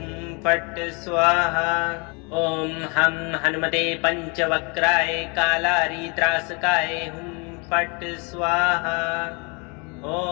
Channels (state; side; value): quieter; right; 32.2 dB